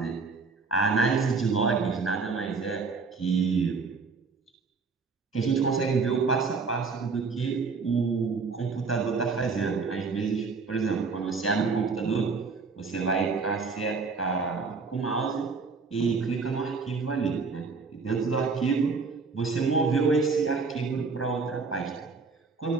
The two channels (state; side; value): quieter; left; 4.6 dB